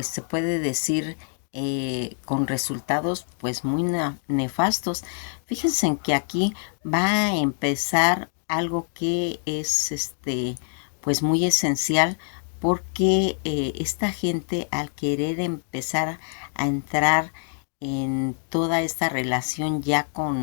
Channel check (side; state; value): right; silent; digital silence